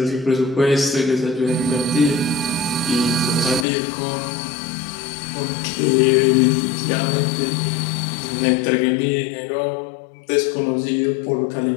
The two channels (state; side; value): drops out; right; at 3.7 s